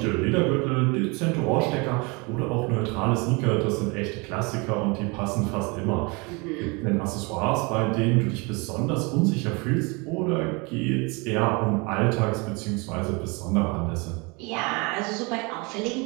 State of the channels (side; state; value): left; quieter; 28.5 dB